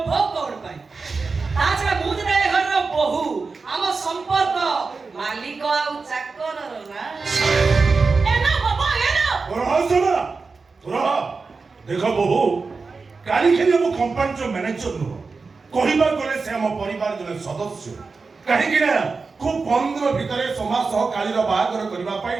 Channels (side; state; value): left; quieter; 4.4 dB